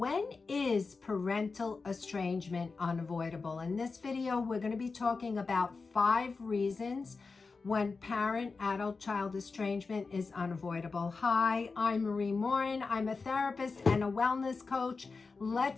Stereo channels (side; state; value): right; quieter; 4.3 dB